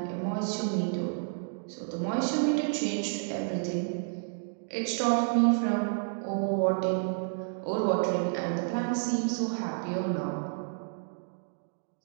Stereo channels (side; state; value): left; silent; digital silence